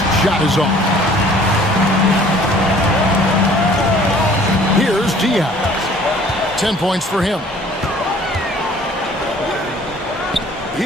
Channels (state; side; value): normal; both; correlation 0.53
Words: shot is off. Here's Diaz. 10 points for him.